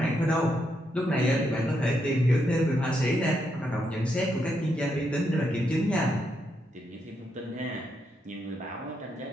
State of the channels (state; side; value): normal; both; correlation 0.80